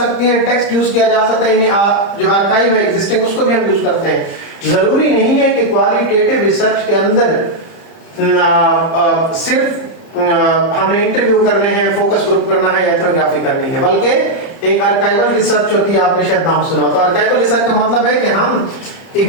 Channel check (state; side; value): late; right; 30 ms